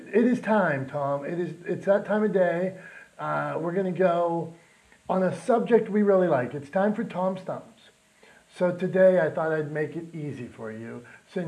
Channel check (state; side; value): identical; both; correlation 1.00